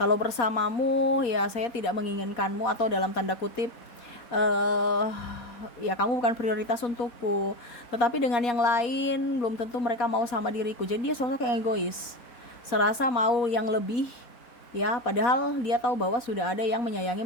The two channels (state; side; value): late; right; 4.1 ms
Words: bersamamu ya saya tidak menginginkanmu atau dalam tanda kutip ya kamu bukan prioritas untukku, tetapi dengan yang lain belum tentu mereka mau sama diriku. Jadi dia sosok yang egois, serasa mau yang lebih ya, padahal dia tahu bahwa sudah ada yang menyayangi,